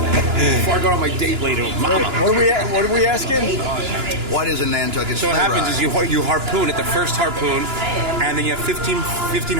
I go on my date later with Mama. What are we asking? What is a Nantucket So sleigh what happens ride? is you harpoon at the first harpoon, and then you have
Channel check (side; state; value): left; late; 2.9 ms